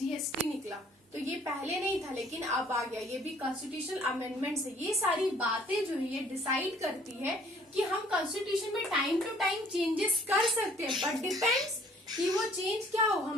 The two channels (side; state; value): both; normal; correlation 0.58